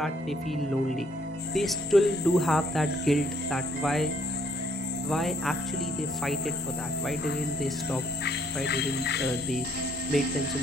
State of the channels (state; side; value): normal; both; correlation 0.67